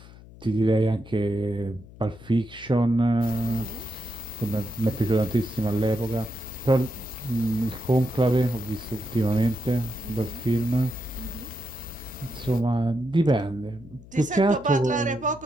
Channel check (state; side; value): noise; left; hum, 19 dB below the sound